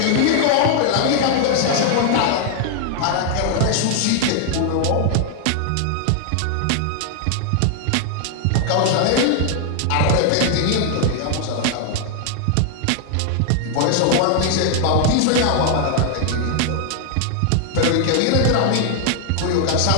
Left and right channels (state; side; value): different; both; correlation 0.00